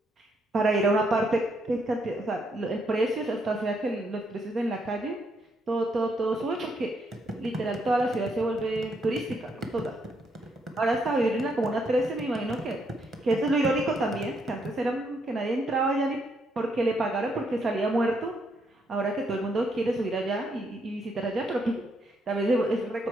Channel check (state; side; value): normal; both; correlation 0.75